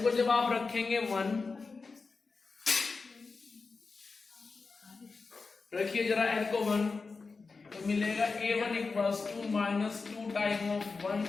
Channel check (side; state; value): right; quieter; 4.3 dB